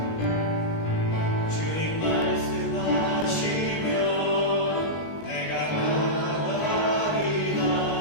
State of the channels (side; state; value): right; late; 19 ms